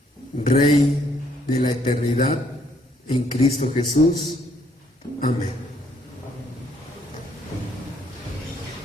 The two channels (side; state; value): both; normal; correlation 0.68